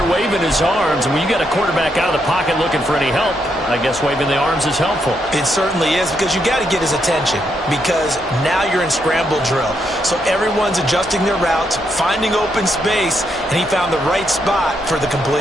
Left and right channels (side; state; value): both; normal; correlation 0.78